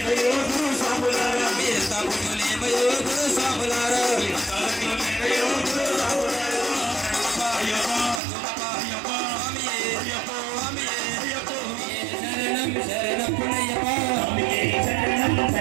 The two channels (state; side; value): drops out; left; at 8.2 s